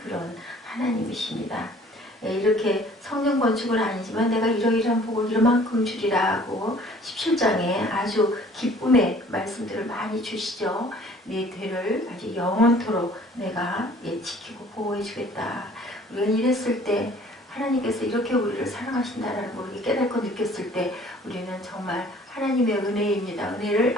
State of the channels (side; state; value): both; normal; correlation 0.53